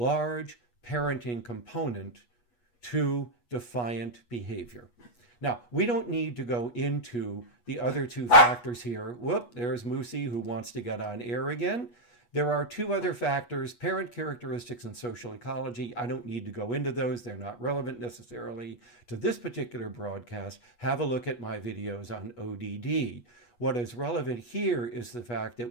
parenting component to defiant behavior. Now, we don't need to go into the other two factors here. Whoop, there's Moosey who wants to get on air again. There are two other factors, parent characteristics and social ecology. I don't need to go into those. They're not relevant necessarily to this particular broadcast. Have a look at my videos on ODD. What is relevant here is the fact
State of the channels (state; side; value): late; right; 8.3 ms